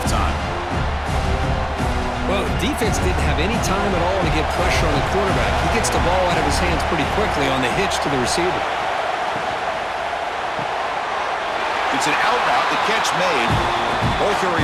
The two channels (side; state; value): both; identical; correlation 1.00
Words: Well, the defense didn't have any time at all to get pressure on the quarterback. He gets the ball out of his hands pretty quickly on the hitch to the receiver. It's an out route, the catch made. Ball